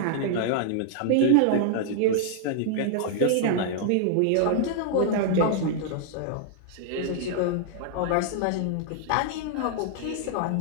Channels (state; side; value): different; both; correlation -0.01